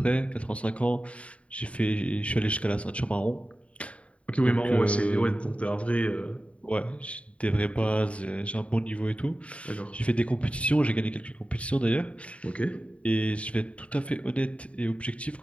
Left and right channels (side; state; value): right; late; 0.063 ms